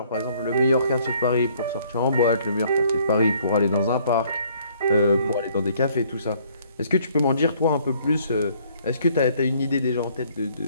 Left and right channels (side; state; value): both; inverted; correlation -0.62